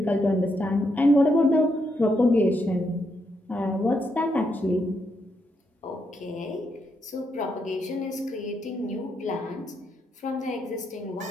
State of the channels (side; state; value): both; normal; correlation 0.80